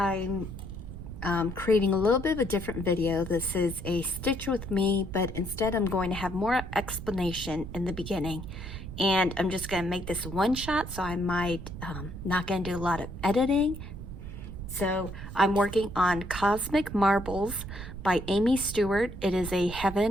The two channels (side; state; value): right; noise; rumble, 10 dB below the sound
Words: creating a little bit of a different video. This is a stitch with me, but instead I'm going to have more explanation in the beginning, and I'm just going to make this one shot, so I might not going to do a lot of editing. So I'm working on Cosmic Marbles by Aimee Stewart. It is a